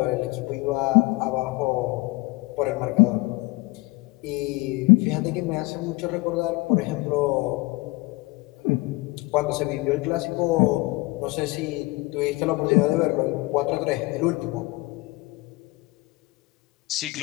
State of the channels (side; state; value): right; quieter; 23.2 dB